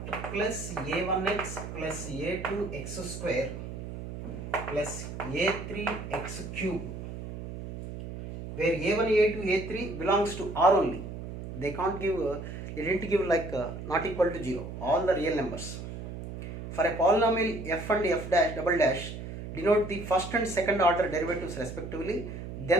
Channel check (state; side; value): noise; right; hum, 9 dB below the sound